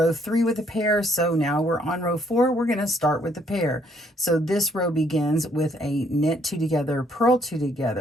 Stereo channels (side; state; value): both; normal; correlation 0.67